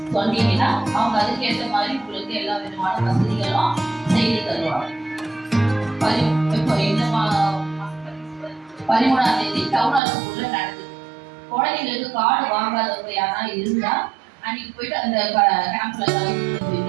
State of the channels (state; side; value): drops out; left; at 10.0 s